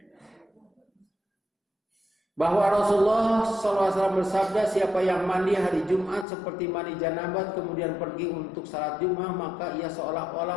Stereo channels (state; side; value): drops out; right; at 6.2 s